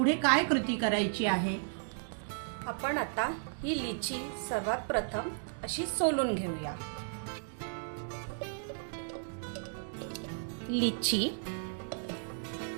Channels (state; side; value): silent; left; digital silence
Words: काय कृती करायची आहे? आपण आता ही लिची सर्वात प्रथम अशी सोलून घेऊया. लिची,